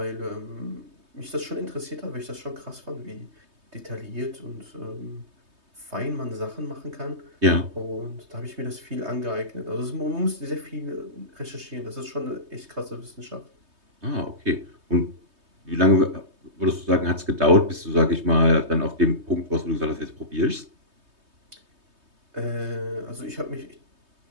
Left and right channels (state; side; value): late; left; 3.2 ms